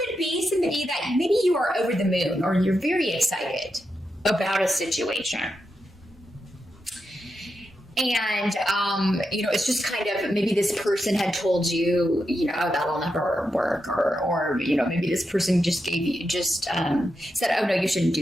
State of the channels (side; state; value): both; normal; correlation 0.86